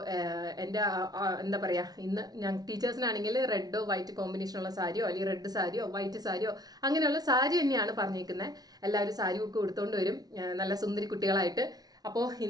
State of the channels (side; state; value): left; late; 0.19 ms